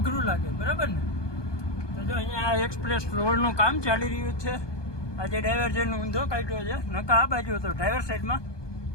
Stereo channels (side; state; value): right; late; 1.2 ms